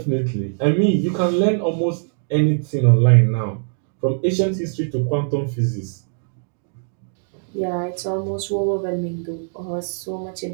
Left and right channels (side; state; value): left; silent; digital silence